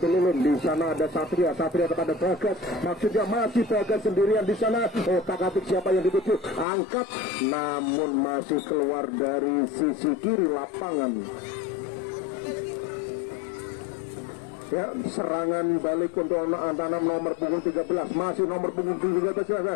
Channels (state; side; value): drops out; right; at 6.7 s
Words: Ulum. Di sana ada Satria kepada Bagas, maksudnya masih Bagas sendirian di sana. Otak-atik siapa yang dituju, angkat, namun masih keluar dari sisi kiri lapangan. Ya, serangan balik untuk anak-anak nomor punggung 13, masih nomor punggung